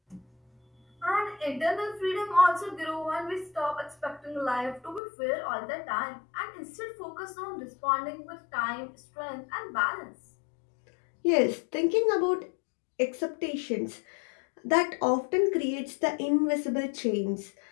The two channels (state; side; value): drops out; right; at 5.0 s